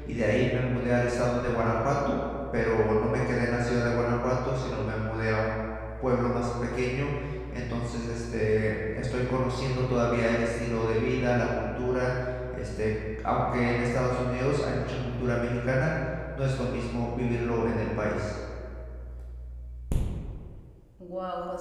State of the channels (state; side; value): identical; both; correlation 1.00